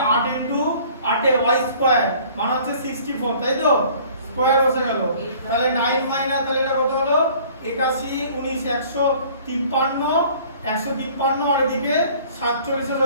8 ইনটু 8 এ y স্কয়ার মানে হচ্ছে 64, তাই তো, স্কয়ার বসে গেল। তাহলে 9 মাইনাস, তাহলে এটা কত হলো? 81 19 153 আর এদিকে 47 এর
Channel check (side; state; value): both; inverted; correlation -0.52